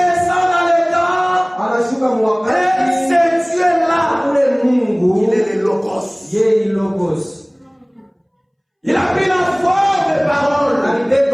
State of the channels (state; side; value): identical; both; correlation 1.00